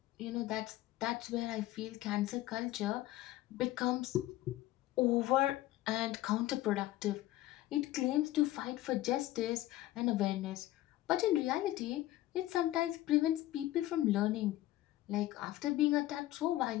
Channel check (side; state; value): right; quieter; 15.6 dB